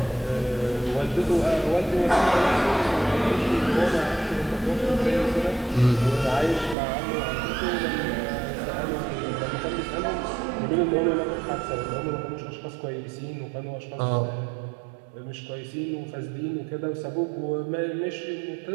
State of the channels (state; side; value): drops out; left; at 6.8 s